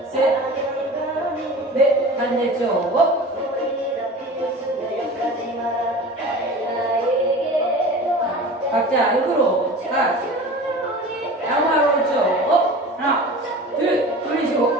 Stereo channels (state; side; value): normal; both; correlation 0.37